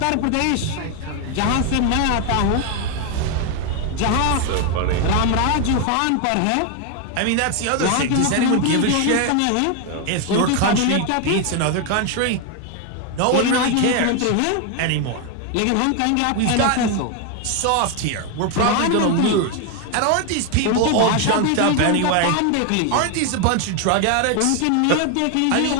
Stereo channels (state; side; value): different; both; correlation 0.01